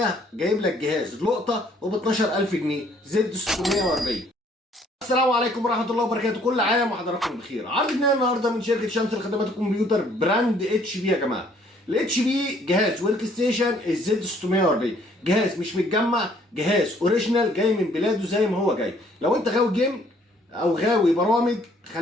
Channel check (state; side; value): normal; both; correlation 0.62